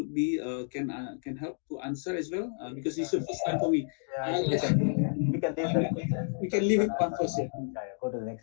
be can help to answer as well because it's the first time for me. We can leave it one first. Go to the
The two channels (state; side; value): silent; right; digital silence